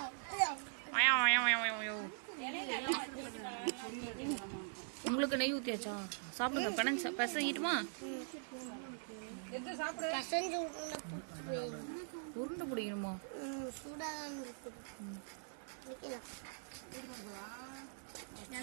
உங்களுக்கு நெய் ஊத்தியாச்சா? சாப்பிடுங்க. பிசைஞ்சிட்டுமா? உருண்டை பிடிக்கணுமா?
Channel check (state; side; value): silent; left; digital silence